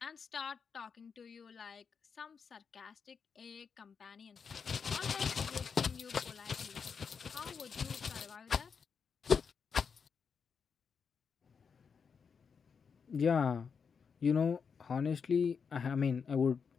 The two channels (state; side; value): quieter; right; 6.1 dB